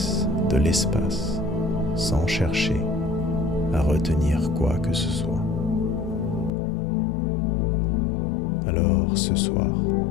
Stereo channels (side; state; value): right; drops out; at 6.5 s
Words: de l'espace sans chercher à retenir quoi que ce soit. Alors ce soir,